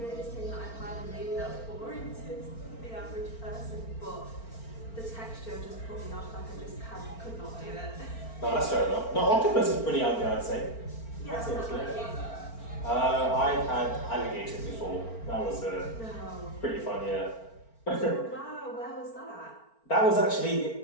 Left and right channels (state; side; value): late; right; 4.4 ms